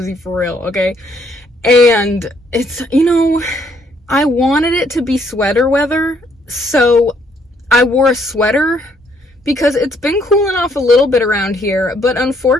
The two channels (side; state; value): both; normal; correlation 0.68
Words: for real, okay? And it's, I wanted it to be sweater weather, so I wore a sweater because it's been cooling off a little bit around here, but